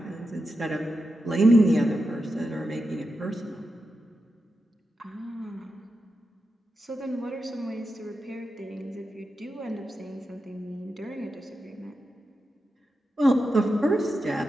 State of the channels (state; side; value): normal; both; correlation 0.89